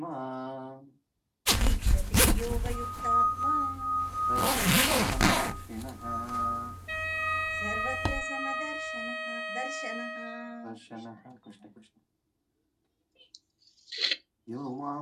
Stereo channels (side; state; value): both; identical; correlation 1.00